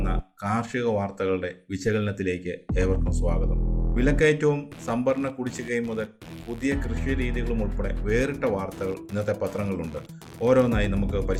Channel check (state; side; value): identical; both; correlation 1.00